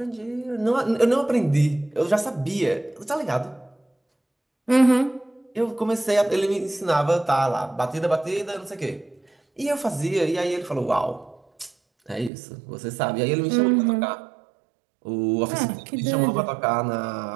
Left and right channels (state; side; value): drops out; left; at 12.3 s